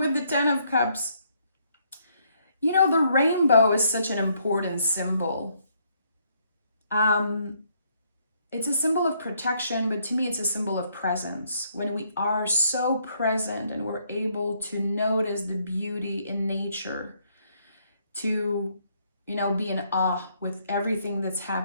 the 10 of Cups, you know, the rainbow is such an important symbol. It's a symbol of protection, but to me, it's a symbol of presence. When we are so present and we're able to notice the beauty in nature, to, you know, be in awe with everything that's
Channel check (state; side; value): inverted; both; correlation -0.70